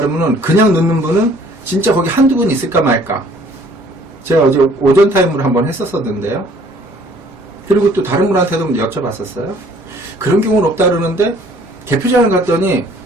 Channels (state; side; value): normal; both; correlation 0.57